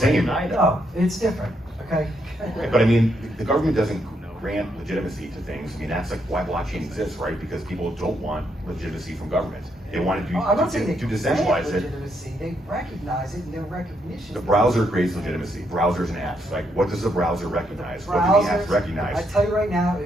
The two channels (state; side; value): normal; both; correlation 0.77